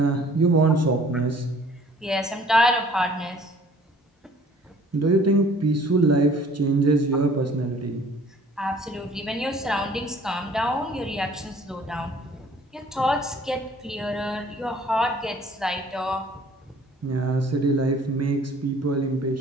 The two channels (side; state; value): both; normal; correlation 0.54